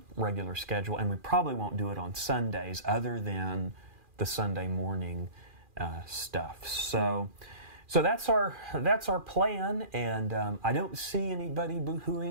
regular schedule, and we probably won't do it on Sundays other than the Sunday morning stuff. So that's our plan, and I don't see anybody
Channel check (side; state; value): left; late; 2.4 ms